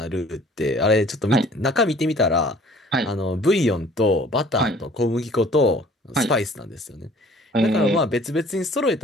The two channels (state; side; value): normal; both; correlation 0.53